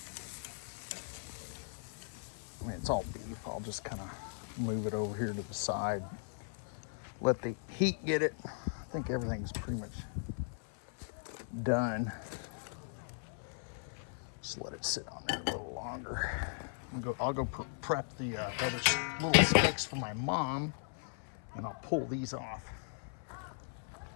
I mean, it's all beef. I'll just kind of move it over here to the side. Let the heat get it. I think everything's pretty much done. Just let it sit on there a little longer. I'll go prep the other little steaks for my mom, and I'll pull these off.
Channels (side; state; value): right; silent; 53 dB below the other